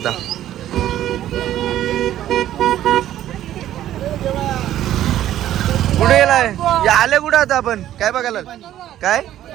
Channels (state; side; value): quieter; left; 12.5 dB